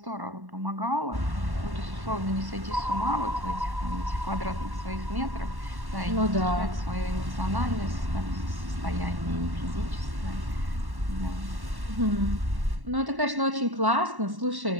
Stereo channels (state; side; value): late; left; 1.1 ms